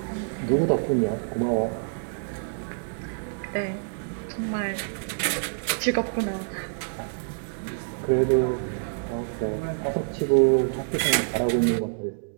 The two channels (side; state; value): left; silent; digital silence